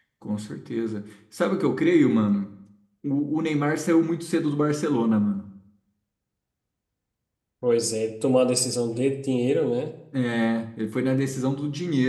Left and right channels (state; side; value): identical; both; correlation 1.00